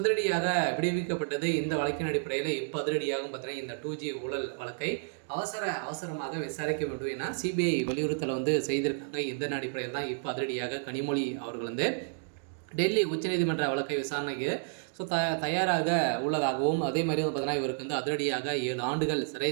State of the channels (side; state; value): left; silent; digital silence